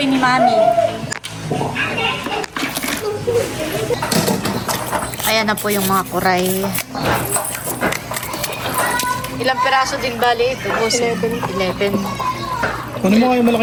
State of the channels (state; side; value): identical; both; correlation 1.00